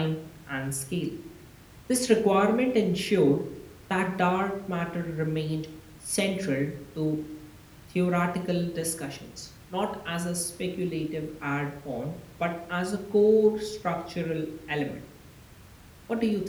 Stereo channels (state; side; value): identical; both; correlation 1.00